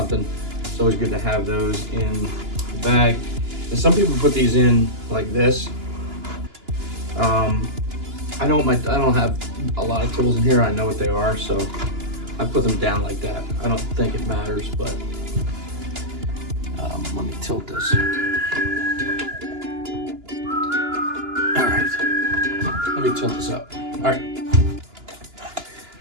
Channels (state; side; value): late; left; 2.9 ms